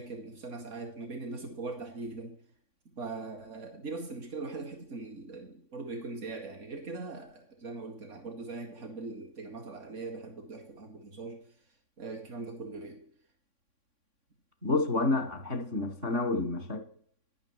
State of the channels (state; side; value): late; left; 3.6 ms